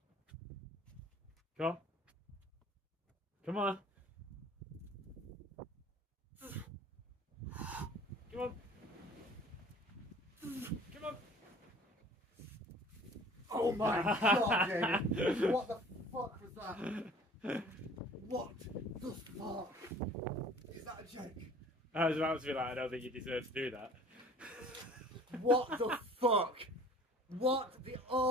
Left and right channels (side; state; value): both; normal; correlation 0.49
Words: Come on. Come on. Come on. Come on. Oh my god, David. What the fuck was that? What the fuck? Is that a joke? I was about to be like, I don't think you deserve to do that. What the fuck? What the...